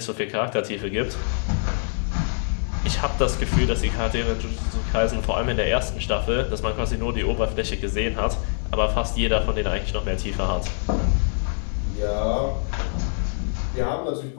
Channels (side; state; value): right; silent; digital silence